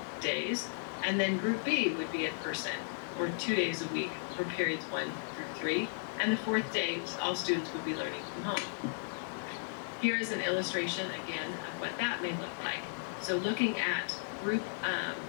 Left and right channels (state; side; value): silent; right; 54 dB below the other